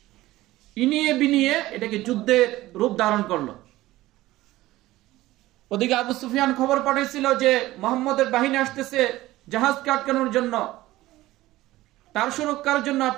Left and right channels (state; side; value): quieter; left; 17.0 dB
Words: ইনিয়ে বিনিয়ে এটাকে যুদ্ধের রূপ ধারণ করলো। ওদিকে আবু সুফিয়ান খবর পাঠাইছিল যে মুহাম্মদের বাহিনী আসতেছে জাহাজকে আটকানোর জন্য, তার সুরক্ষার জন্য